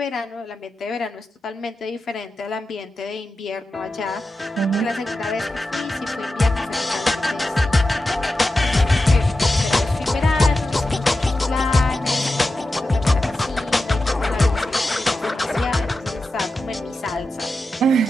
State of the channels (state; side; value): normal; both; correlation 0.92